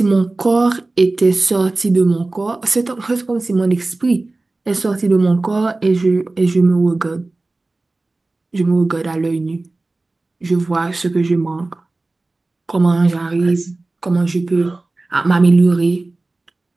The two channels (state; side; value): quieter; left; 3.1 dB